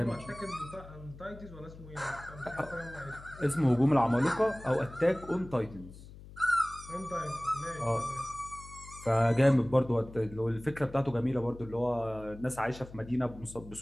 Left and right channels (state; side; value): noise; left; hum, 17 dB below the sound